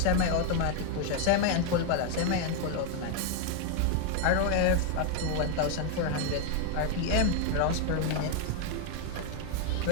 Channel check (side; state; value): both; different; correlation 0.01